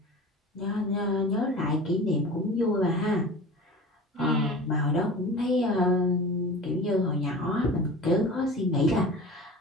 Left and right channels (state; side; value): normal; both; correlation 0.37